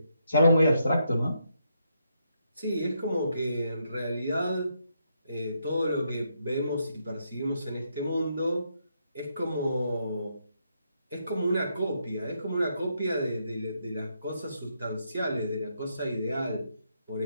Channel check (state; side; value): inverted; both; correlation -0.78